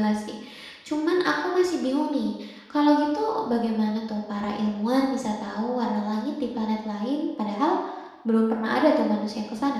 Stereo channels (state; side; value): identical; both; correlation 1.00